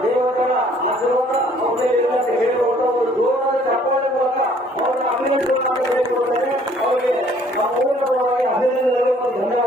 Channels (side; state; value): both; normal; correlation 0.59